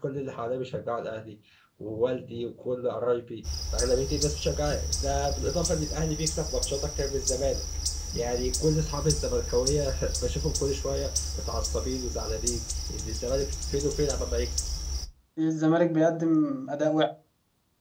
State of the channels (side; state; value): both; identical; correlation 1.00